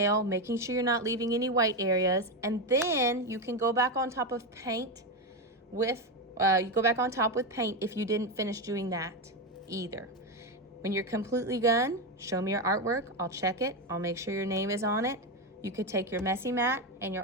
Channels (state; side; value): normal; both; correlation 0.11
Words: making sure you're not leaving any white areas, and then you can go back on top of paint with You go back on top with paint if you didn't finish doing that either. When you're completely done, show me your artwork. I'll check it. I'll make sure your name is on it. You could take your messy mat and your